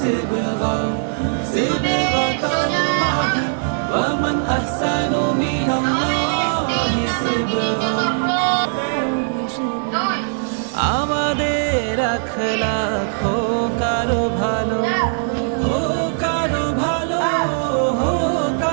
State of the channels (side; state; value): left; silent; 66 dB below the other